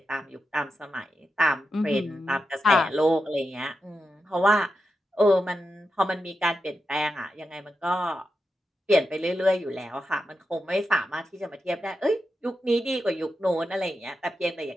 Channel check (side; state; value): both; normal; correlation 0.88